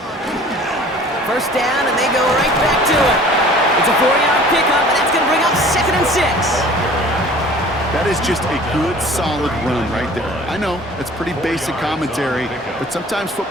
First down, and they go right back to it. It's a 4-yard pickup, and that's going to bring up 2nd and 6. That is just a good, solid run right there. I know, it's pretty basic commentary, but sometimes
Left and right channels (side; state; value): both; normal; correlation 0.47